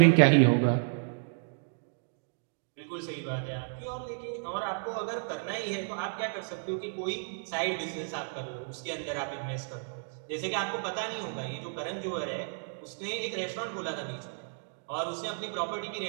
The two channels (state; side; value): silent; left; digital silence